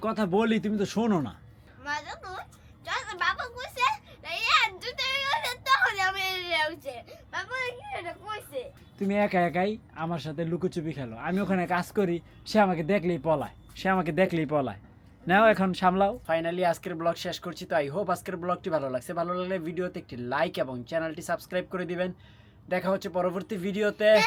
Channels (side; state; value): both; identical; correlation 1.00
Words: কথা বলি তুমি তো শোনো না। বাবা কইছে তুমি একা একাই আমার সাথে লুকোচুপি খেলো, আমি ওখানে কাজ করি, সে আমাকে দেখলেই পলায়। নাও এখন সামলাও। ফাইনালি আজকের ব্লগ শেষ করছি। তো আই হোপ আজকের ব্লগটি ভালো লাগছে। ভালো লাগলে ভিডিওতে একটি লাইক এবং চ্যানেলটি সাবস্ক্রাইব করে দিবেন। দেখা হচ্ছে পরবর্তী ভিডিওতে।